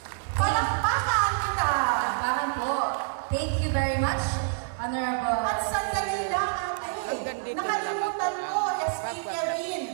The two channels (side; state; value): left; silent; 57 dB below the other